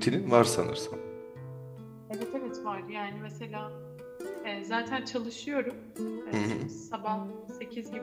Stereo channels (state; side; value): identical; both; correlation 1.00